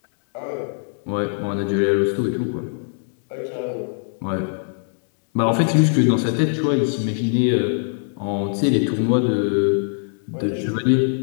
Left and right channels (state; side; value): silent; right; digital silence